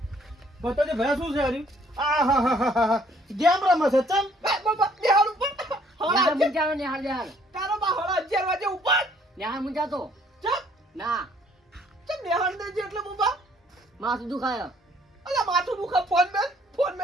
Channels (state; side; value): normal; both; correlation 0.62